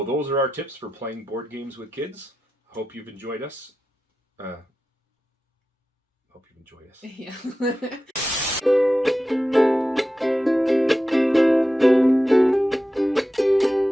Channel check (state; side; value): normal; both; correlation 0.92